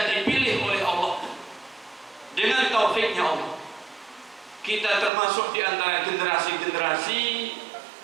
dipilih oleh Allah dengan taufiknya Allah. Kita termasuk di antara generasi-generasi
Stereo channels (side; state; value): left; drops out; at 5.1 s